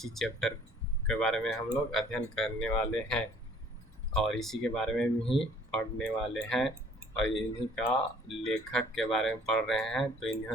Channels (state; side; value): normal; both; correlation 0.56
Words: चैप्टर के बारे में हम लोग अध्ययन करने वाले हैं और इसी के बारे में ही पढ़ने वाले हैं और इन्हीं का लेखक के बारे में पढ़ रहे हैं। तो